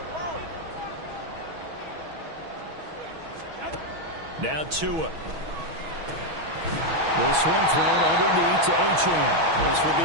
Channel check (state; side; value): late; left; 6.2 ms